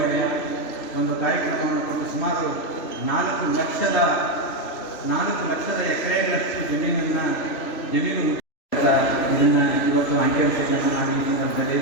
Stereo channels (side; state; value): right; late; 3.0 ms